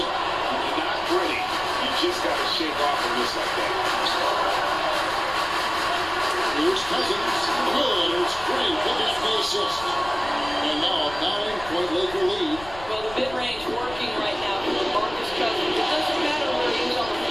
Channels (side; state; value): left; noise; rumble, 16 dB below the sound